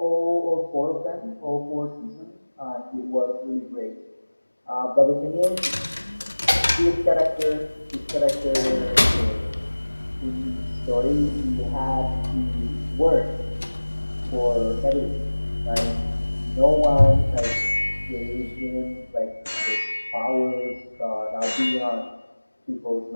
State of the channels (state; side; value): inverted; both; correlation -1.00